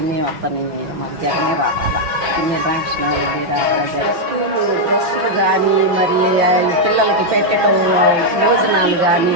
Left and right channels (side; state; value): left; late; 5.8 ms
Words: వస్తున్నాయి. మాకు జగనే రావాలా, పిన్నెల్లి రామకృష్ణారెడ్డి రావాలా. స్కూలు డ్రెస్సులు కానీ, మరి పిల్లలకి పెట్టడం భోజనాలు కానీ